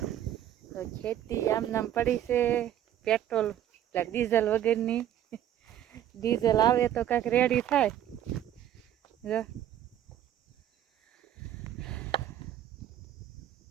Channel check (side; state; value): left; quieter; 11.3 dB